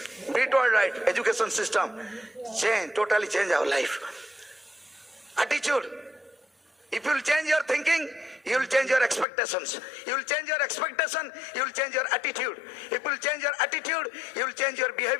Brit World right education system change, totally change our life. Attitude, if you will change your thinking, you will change your expectations. You will change your expectation, you will change your attitude. If you will change your attitude, you will change your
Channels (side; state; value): right; drops out; at 9.2 s